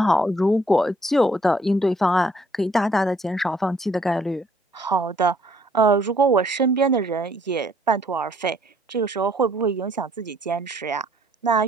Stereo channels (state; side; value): normal; both; correlation 0.64